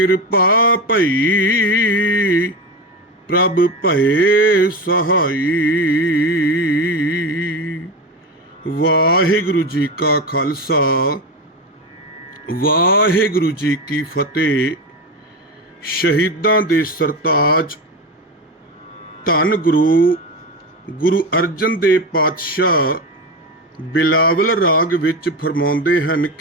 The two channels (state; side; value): normal; both; correlation 0.20